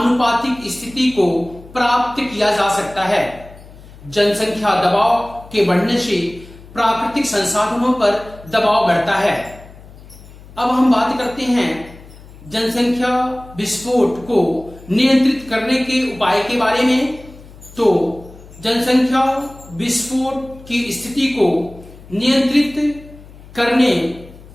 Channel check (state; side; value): noise; left; hum, 20 dB below the sound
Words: स्थिति को प्राप्त किया जा सकता है। जनसंख्या दबाव के बढ़ने से प्राकृतिक संसाधनों पर दबाव बढ़ता है। अब हम बात करते हैं जनसंख्या विस्फोट को नियंत्रित करने के उपाय के बारे में। तो जनसंख्या विस्फोट की स्थिति को नियंत्रित करने